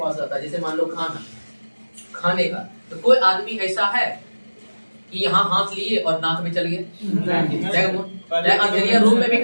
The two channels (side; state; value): both; inverted; correlation -1.00